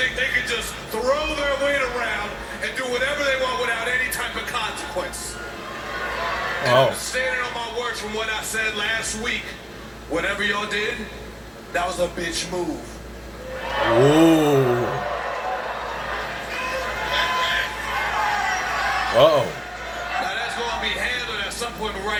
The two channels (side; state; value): both; identical; correlation 1.00